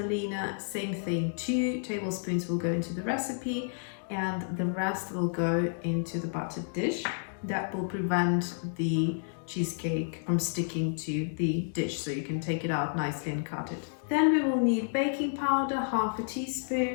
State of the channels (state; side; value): silent; right; digital silence